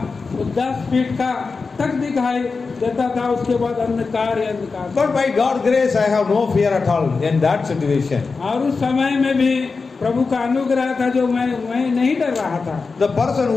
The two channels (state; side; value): quieter; right; 4.5 dB